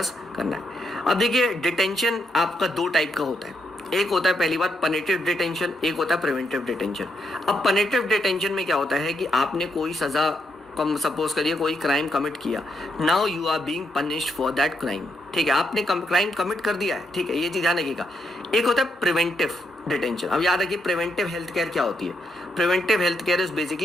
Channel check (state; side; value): normal; both; correlation 0.79